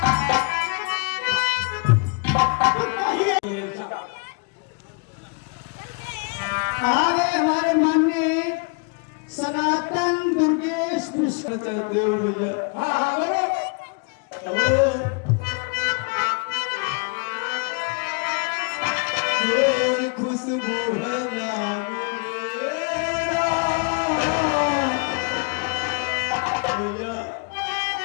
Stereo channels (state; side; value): quieter; right; 35.1 dB